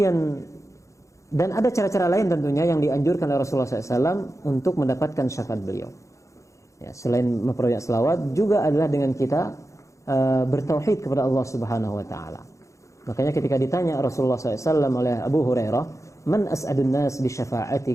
dan ada cara-cara lain tentunya yang dianjurkan oleh Rasulullah SAW untuk mendapatkan syafaat beliau. Ya, selain memperbanyak salawat, juga adalah dengan kita bertauhid kepada Allah Subhanahu Wa Taala. Makanya ketika ditanya Rasulullah SAW oleh Abu Hurairah, "Man as'adun nas bi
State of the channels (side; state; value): right; late; 0.15 ms